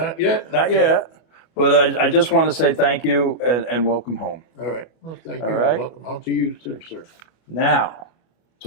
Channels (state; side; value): late; right; 25 ms